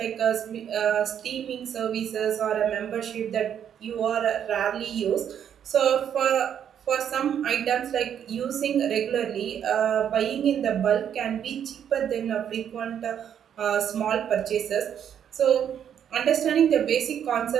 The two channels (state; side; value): quieter; left; 9.0 dB